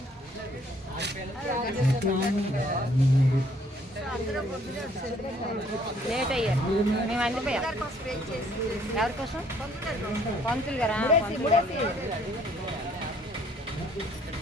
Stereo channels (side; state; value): both; normal; correlation 0.62